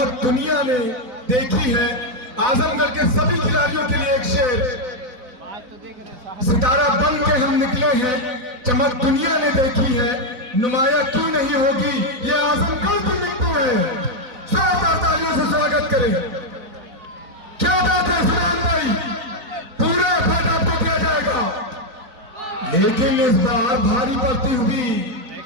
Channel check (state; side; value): late; left; 4.0 ms